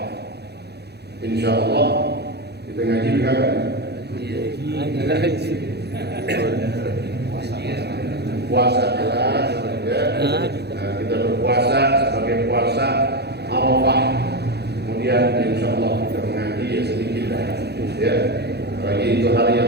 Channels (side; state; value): left; late; 0.48 ms